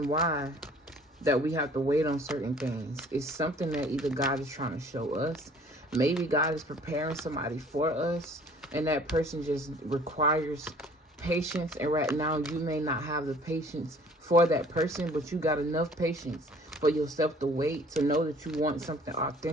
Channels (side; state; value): both; normal; correlation 0.53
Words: why that we have to wait on certain things. It's something that either God is trying to show us. Maybe God is preparing somebody for us, and that person just requires patience. And right now you may not have the patience for that person, but you got enough patience for yourself to wait, to know that you want something